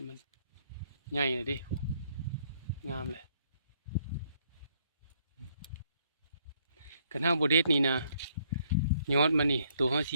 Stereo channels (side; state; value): both; inverted; correlation -0.69